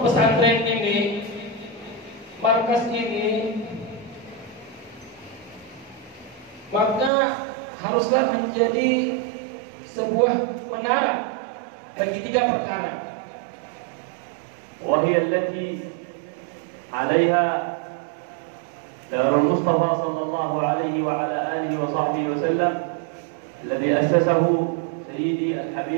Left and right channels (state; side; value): drops out; left; at 7.1 s